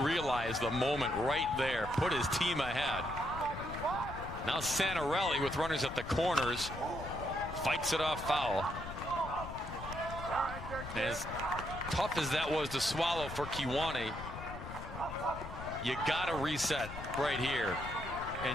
the moment right there put his team ahead. Now Santarelli, with runners at the corners, fights it off foul. And as tough as that was to swallow for Kiwani, you got to reset right here.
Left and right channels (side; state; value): left; noise; rumble, 10 dB below the sound